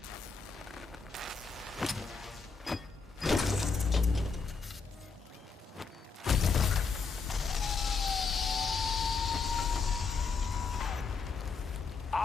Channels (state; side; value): quieter; right; 4.9 dB